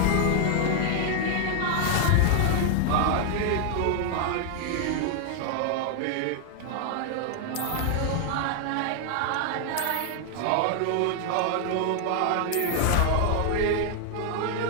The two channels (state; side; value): different; both; correlation 0.00